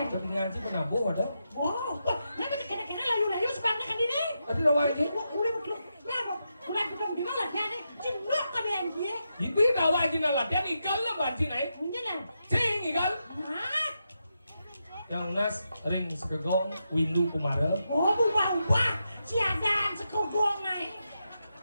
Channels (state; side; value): inverted; both; correlation -0.86